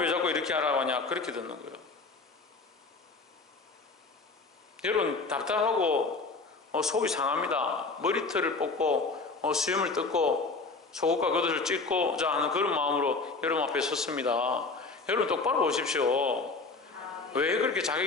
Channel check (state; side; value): quieter; right; 3.9 dB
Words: 자꾸 이렇게 하라고 하냐, 그렇게 듣는 거예요. 여러분 답답하고 속이 상합니다. 머리털을 뽑고 수염을 뜯고 속옷과 겉옷을 찢고자 하는 그런 마음으로 여러분 앞에 섰습니다. 여러분 똑바로 보십시오. 왜 그렇게